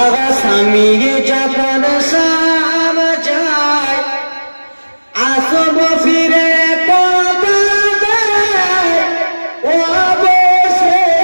স্বামী যখন শাম যায় আসব ফিরে কথা দেয় ও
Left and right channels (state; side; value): inverted; both; correlation -1.00